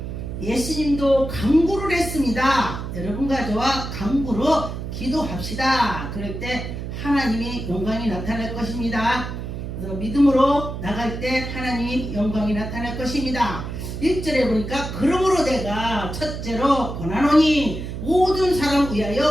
예수님도 간구를 했습니다. 여러분과 저와 간구로 기도합시다. 그럴 때 하나님이 영광이 나타날 것입니다. 그래서 믿음으로 나갈 때 하나님이 영광이 나타날 것입니다. 1절에 보니까 그러므로 내가 첫째로 권하노니 모든 사람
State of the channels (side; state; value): right; noise; hum, 6 dB below the sound